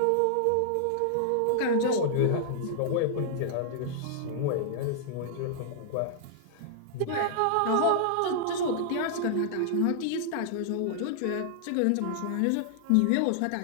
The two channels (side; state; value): both; different; correlation -0.01